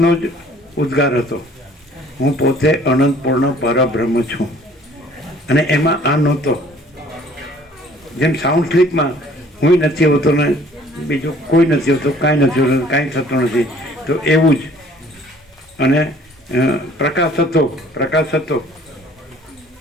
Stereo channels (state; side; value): normal; both; correlation 0.55